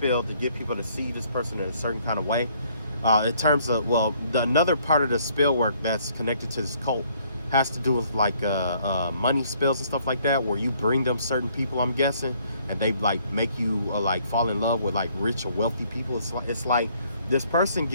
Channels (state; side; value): inverted; both; correlation -0.64